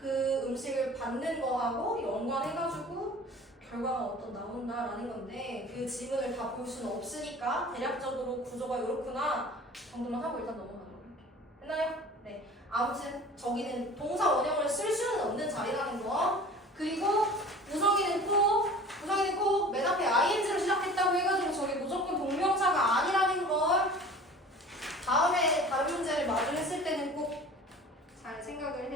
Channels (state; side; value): normal; both; correlation 0.43